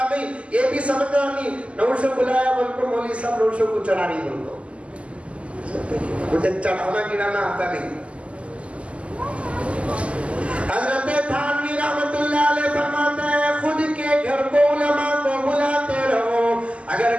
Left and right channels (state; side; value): late; left; 0.059 ms